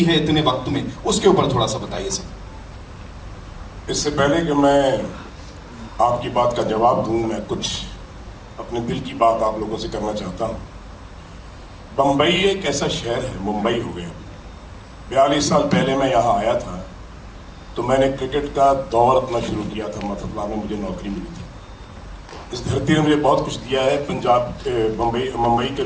है इतने वक्त में, उसके ऊपर थोड़ा सा बताइए सर। इससे पहले कि मैं आपकी बात का जवाब दूं, मैं कुछ अपने दिल की बात आप लोगों से करना चाहता हूं। बम्बई एक ऐसा शहर है, मुंबई हो गया। 42 साल पहले मैं यहाँ आया था तो मैंने क्रिकेट का दौर अपना शुरू किया था, मतलब में मुझे नौकरी मिली थी। इस धरती ने मुझे बहुत कुछ दिया है, पंजाब मुंबई के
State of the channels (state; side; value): identical; both; correlation 1.00